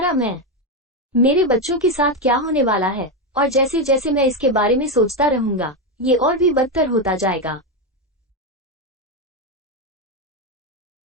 मैं। मेरे बच्चों के साथ क्या होने वाला है? और जैसे जैसे मैं इसके बारे में सोचता रहूंगा, ये और भी बदतर होता जाएगा।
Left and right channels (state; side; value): normal; both; correlation 0.09